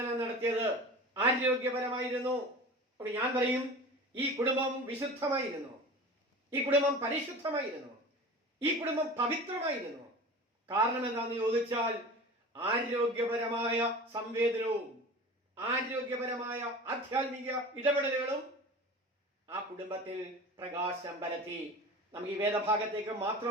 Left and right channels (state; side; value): normal; both; correlation 0.36